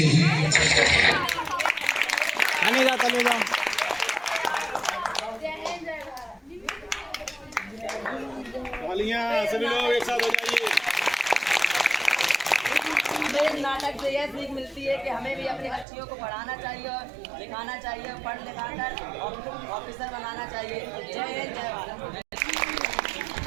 सभी लोग एक साथ हो जाइए। इस नाटक से यह सीख मिलती है कि हमें भी अपनी बच्चियों को पढ़ाना चाहिए और लिखाना चाहिए, पढ़ लिखा कर ऑफिसर बनाना चाहिए। जय हिंद, जय भारत।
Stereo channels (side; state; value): left; drops out; at 15.9 s